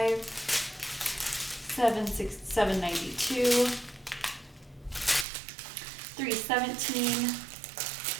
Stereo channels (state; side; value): drops out; left; at 5.2 s